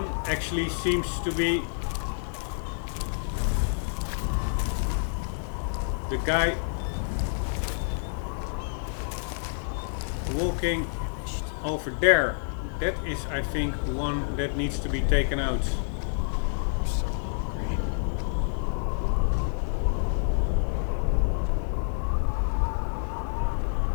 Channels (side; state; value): right; silent; 59 dB below the other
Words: actually seems to be the guy walking over there. That is, I think, one that needs to be taken out.